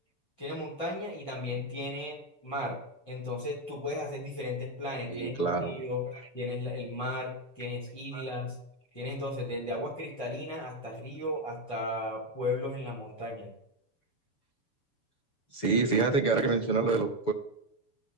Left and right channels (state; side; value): late; right; 6.9 ms